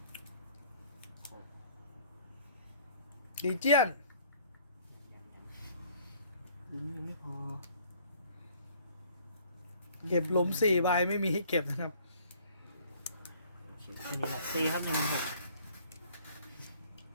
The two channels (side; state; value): both; inverted; correlation -0.57